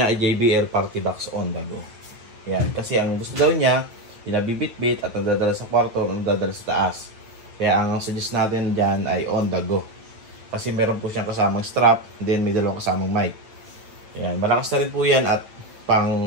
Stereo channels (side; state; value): left; late; 9.1 ms